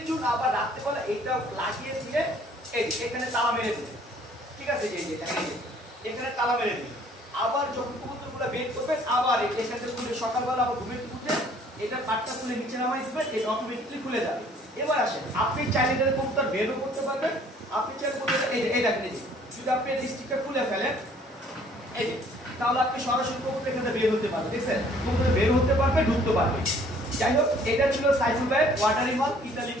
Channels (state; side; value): normal; both; correlation 0.58